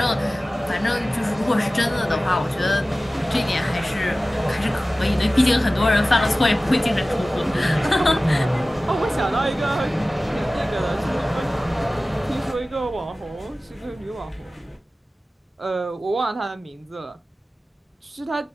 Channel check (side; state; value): both; normal; correlation 0.96